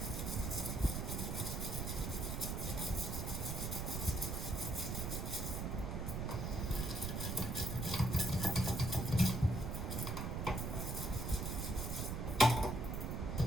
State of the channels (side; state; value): right; noise; rumble, 2 dB below the sound